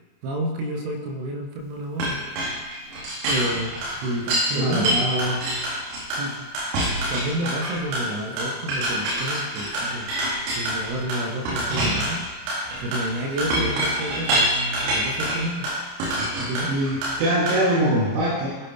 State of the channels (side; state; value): left; late; 29 ms